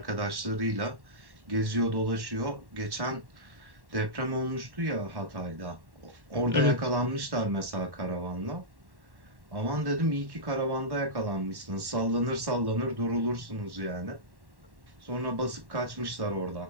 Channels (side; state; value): left; late; 1.1 ms